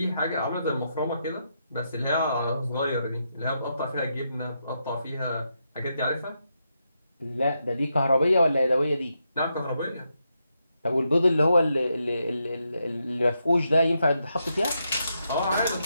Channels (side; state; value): both; inverted; correlation -0.82